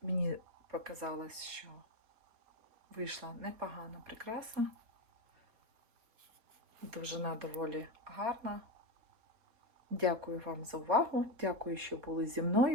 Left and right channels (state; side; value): late; left; 4.2 ms